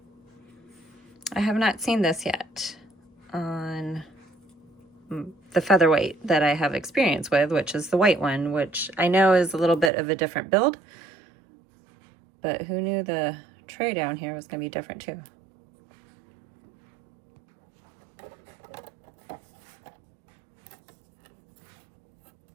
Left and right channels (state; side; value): drops out; left; at 9.9 s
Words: I have not seen this yet on the Featherweight that I have experience with, which is the white one, which I know is a little bit of a different build, but who knew the tray down here was going to be different too.